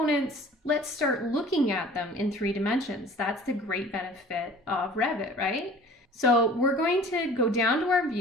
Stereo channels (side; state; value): both; normal; correlation 0.47